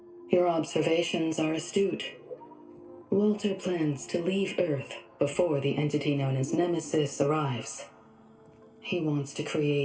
Your observations are astute. Walter plans to leave Earth before the entity known as Nemesis arrives. He wants to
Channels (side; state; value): both; identical; correlation 1.00